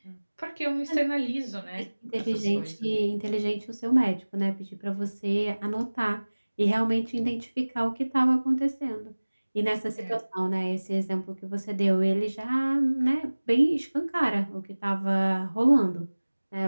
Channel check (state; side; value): inverted; both; correlation -1.00